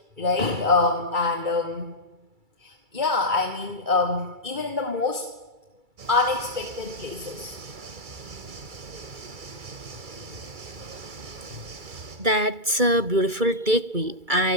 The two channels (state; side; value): late; left; 2.3 ms